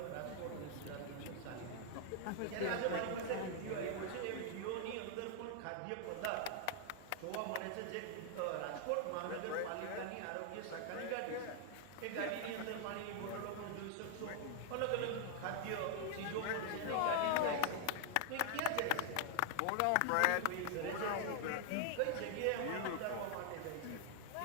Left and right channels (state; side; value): different; both; correlation 0.00